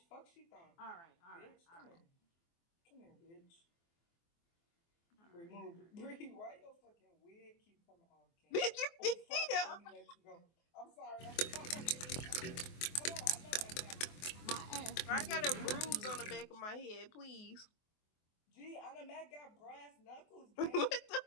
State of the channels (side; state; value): right; late; 24 ms